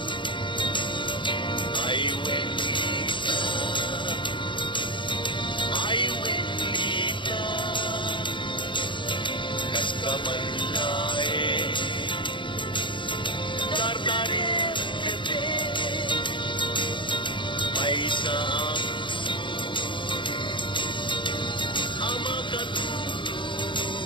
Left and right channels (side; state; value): right; late; 0.23 ms